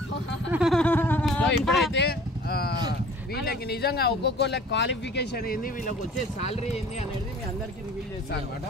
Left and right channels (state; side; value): normal; both; correlation 0.48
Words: సో ఇప్పుడైతే వీళ్ళకి నిజంగా ఒక్కొక్కళ్ళ క్వాలిఫికేషన్ ఏంది, వీళ్ళకి వచ్చే సాలరీ ఏంది అనేది మీ అందరికి రివీల్ చేస్తాను అనమాట.